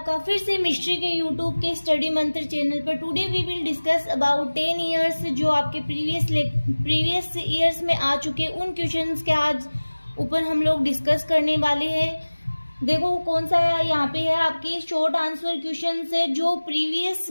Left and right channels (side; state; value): both; inverted; correlation -1.00